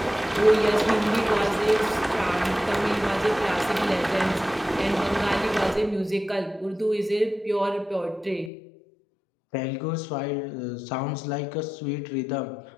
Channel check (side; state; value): right; drops out; at 8.5 s